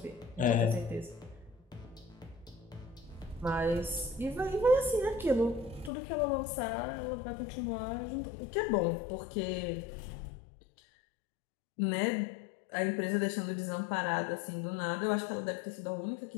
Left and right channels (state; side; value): drops out; right; at 5.9 s